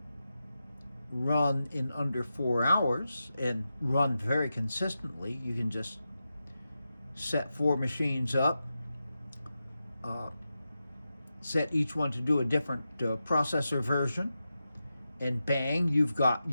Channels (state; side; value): inverted; both; correlation -0.90